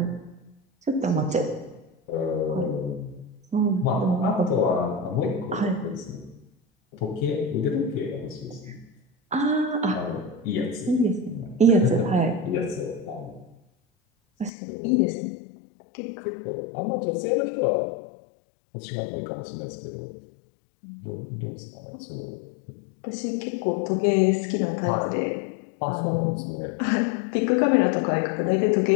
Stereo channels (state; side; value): drops out; right; at 14.5 s